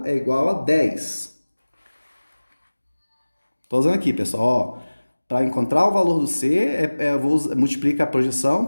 é igual a 10. Estou usando aqui, pessoal, ó. Para encontrar o valor do C, eu vou multiplicar a projeção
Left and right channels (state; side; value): inverted; both; correlation -1.00